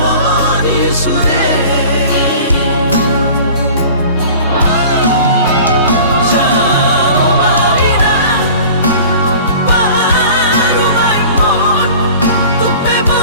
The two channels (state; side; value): inverted; both; correlation -0.43